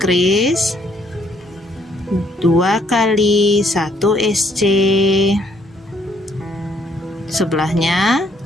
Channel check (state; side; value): normal; both; correlation 0.68